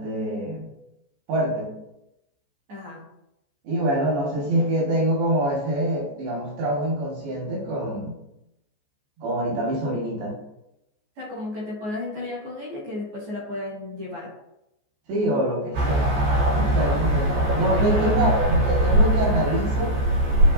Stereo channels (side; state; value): left; late; 14 ms